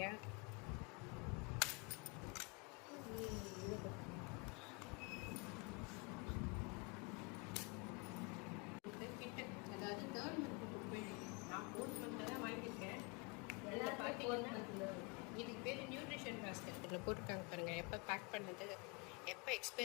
இதுக்கு பேர் நியூட்ரிஷன் பாஸ்கெட். இதில் போட்டிருக்காங்க பாருங்கள், எப்போ பேக் பண்ணது, எப்போ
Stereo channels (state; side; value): quieter; right; 30.3 dB